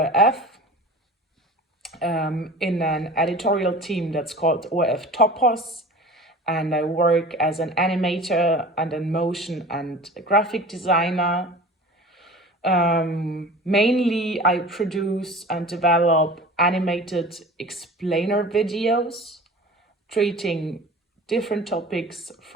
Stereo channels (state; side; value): normal; both; correlation 0.39